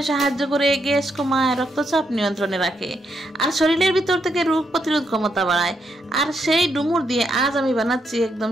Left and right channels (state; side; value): normal; both; correlation 0.79